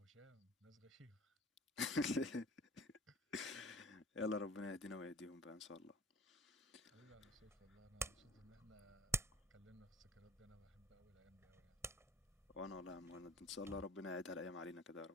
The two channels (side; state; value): both; normal; correlation 0.48